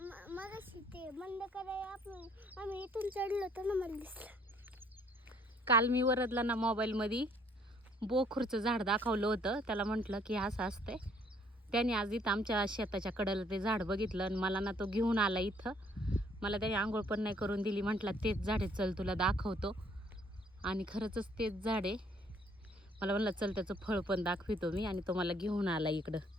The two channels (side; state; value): both; normal; correlation 0.63